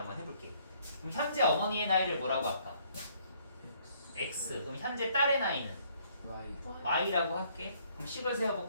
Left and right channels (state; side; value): inverted; both; correlation -0.65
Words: 해볼게. 그럼 현재 어머니의 나이를 뭐라고 할까? x. 그럼 현재 딸의 나이는 y y라고 할게. 그럼 식을